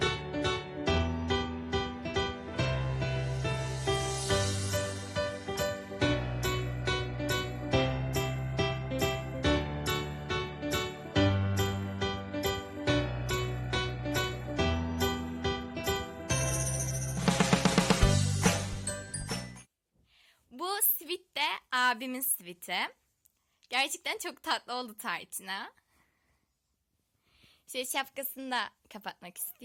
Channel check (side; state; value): both; identical; correlation 1.00